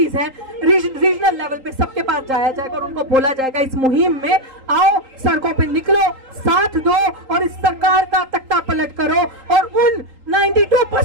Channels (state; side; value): late; left; 3.8 ms